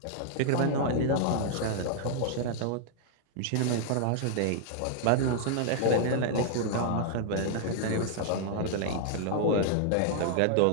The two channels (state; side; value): different; both; correlation -0.01